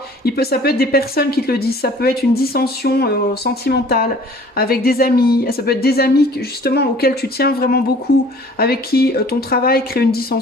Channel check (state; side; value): normal; both; correlation 0.51